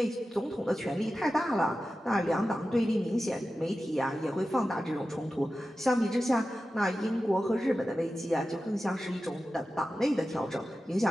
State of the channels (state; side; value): normal; both; correlation 0.93